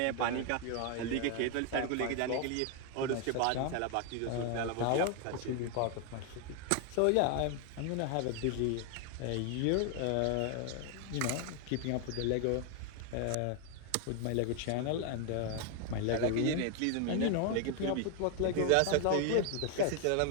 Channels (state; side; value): different; both; correlation 0.01